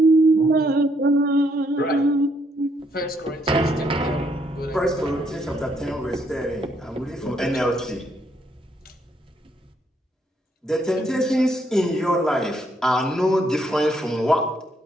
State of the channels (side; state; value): both; normal; correlation 0.72